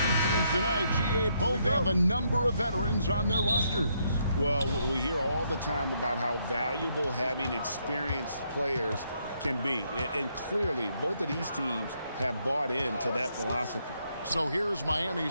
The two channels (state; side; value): inverted; both; correlation -0.74